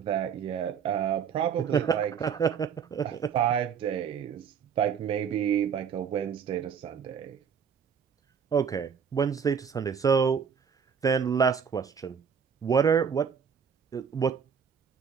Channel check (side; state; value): left; quieter; 7.1 dB